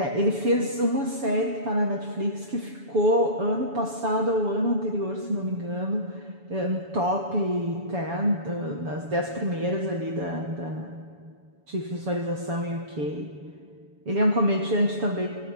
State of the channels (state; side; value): late; left; 7.1 ms